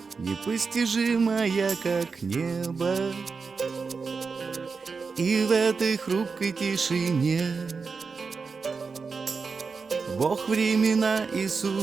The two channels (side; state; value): left; quieter; 4.9 dB